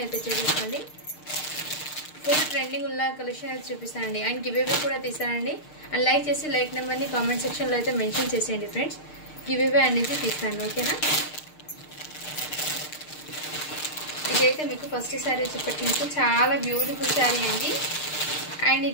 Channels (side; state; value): right; late; 6.6 ms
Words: అయితే చేసేసుకోండి. ఫుల్ ట్రెండింగ్ ఉన్న కలెక్షన్ అయితే చూపిస్తానండి. అండ్ గివ్ అవే కూడా తీస్తానండి. అండ్ లైక్ చేసి లైక్ నెంబర్ని కామెంట్ సెక్షన్లో అయితే మెన్షన్ చేసేయండి ఫ్రెండ్స్. గివ్ అవే అనేది తీస్తాను, ఓకేనా. ఇదైతే మీకు ఫస్ట్ శారీ వచ్చేప్పటికి మీకు చాలా బ్యూటిఫుల్ శారీ అండి. అండ్